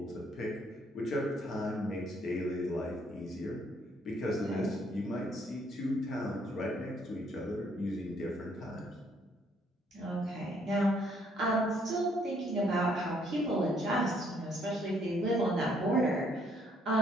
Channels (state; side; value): normal; both; correlation 0.67